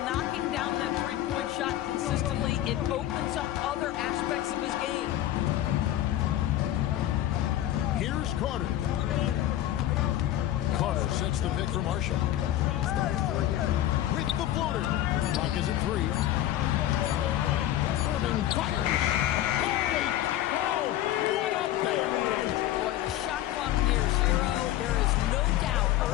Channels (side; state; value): right; quieter; 13.2 dB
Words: down that three-point shot consistently, it opens up other aspects of his game. Here's Carter. Carter sets the pick for Marshall. With the floater. Clock is at 3. Irving fires. Holy cow! What a bang! Boy, the shot clock near 0. There is no doubt